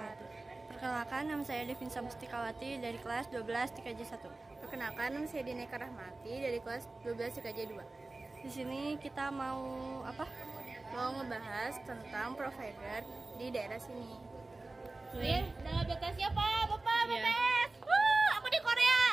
Perkenalkan, nama saya Devinsa Mustikawati dari kelas 12 TKJ 1. Perkenalkan, nama saya Dineka Rahmati dari kelas 12 TKJ 2. Di sini kita mau apa? Mau ngebahas tentang provider di daerah sini. Dalam BTS siapa? Bapak Iya. BTS. Aku di Korea.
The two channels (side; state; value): left; quieter; 3.2 dB